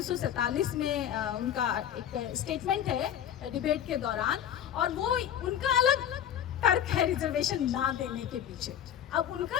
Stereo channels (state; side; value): quieter; right; 10.0 dB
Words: में उनका एक स्टेटमेंट है डिबेट के दौरान, और वो उनका अलग तर्क है रिजर्वेशन ना देने के पीछे। अब उनका